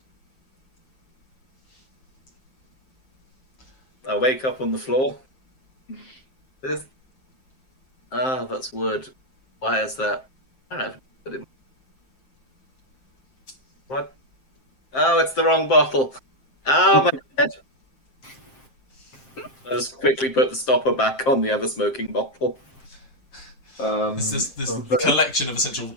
I wake up on the floor. This... Ah, that's wood. Why is that? I don't know. What? Oh, it's the wrong bottle. Oh, my head. I just quickly put the stopper back on the other smoking bottle. This collection of essential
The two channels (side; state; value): right; late; 7.6 ms